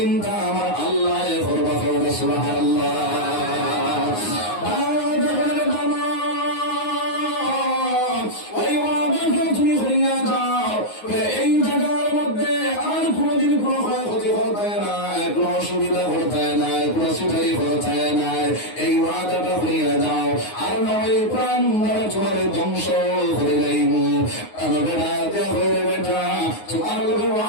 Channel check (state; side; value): late; right; 9.6 ms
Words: আমার আল্লাহ করবা। সুবহানাল্লাহ। তুমি হইয়া যাও, এই জায়গার মধ্যে আর কোনদিন কোনো ক্ষয়ক্ষতি হতে নাই, কোনো অসুবিধা হতে নাই, কোনো সিটারি হতে নাই। এই ওয়াদাটা হইয়া যাও, আর নয় প্রাণ তোমার ধ্বংস হয়ে যাইব। বেটা তোমার লোকের